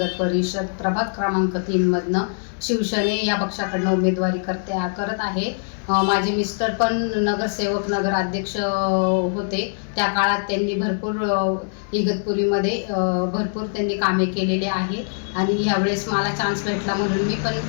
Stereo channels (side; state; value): right; silent; digital silence